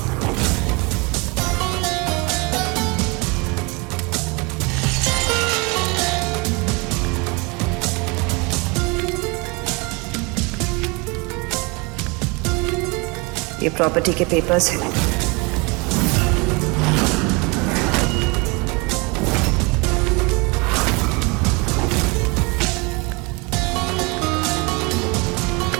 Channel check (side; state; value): left; quieter; 28.4 dB